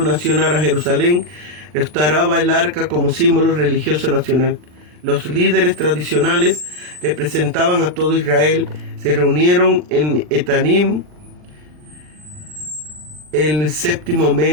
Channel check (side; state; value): left; late; 40 ms